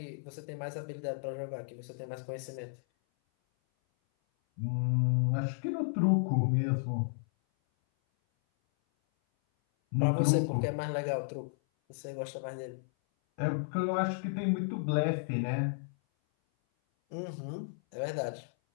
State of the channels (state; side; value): silent; right; 56 dB below the other